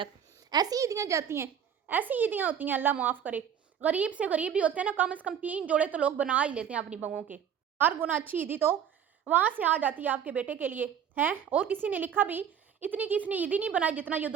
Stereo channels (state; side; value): quieter; left; 8.5 dB